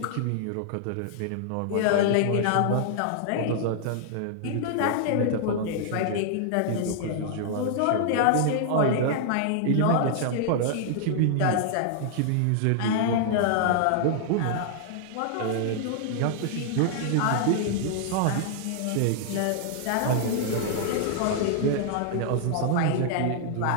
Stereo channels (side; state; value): both; different; correlation -0.01